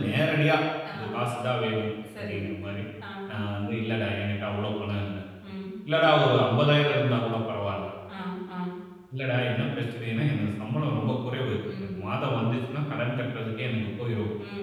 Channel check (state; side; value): identical; both; correlation 1.00